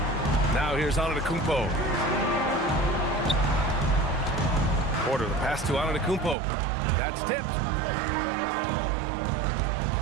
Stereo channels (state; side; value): drops out; left; at 6.4 s